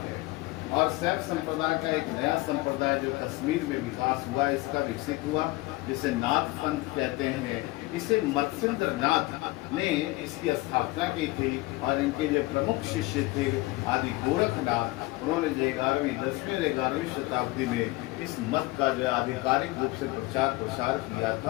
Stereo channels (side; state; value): right; quieter; 20.7 dB